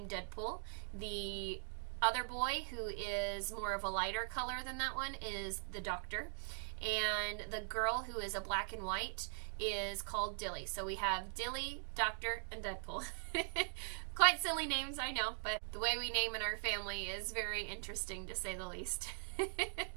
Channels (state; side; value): silent; left; digital silence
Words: Deadpool. The other boy, who is more of a lighter color than that one, is the Doctor. And the girl, who is a black and white, is called Dilly. So we have Dilly, Doctor, and Deadpool. Quite silly names, I know, but the way we name in our family is very interesting, to say the least.